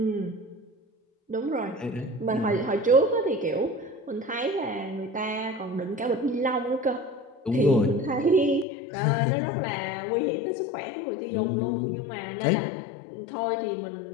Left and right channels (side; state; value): right; drops out; at 8.7 s